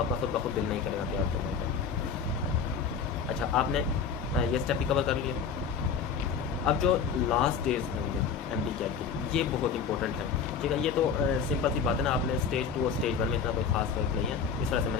खुद ब खुद दिल नहीं करेगा तैयार करने का। अच्छा, आपने ये स्टेप भी कवर कर लिया। अब जो लास्ट डेज होंगे MD-CAT के, ये बहुत इंपॉर्टेंट है, ठीक है। ये तो सिंपल सी बात है ना, आपने स्टेज 2 और स्टेज 1 में इतना कोई खास फर्क नहीं है, इस तरह से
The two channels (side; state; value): right; quieter; 6.2 dB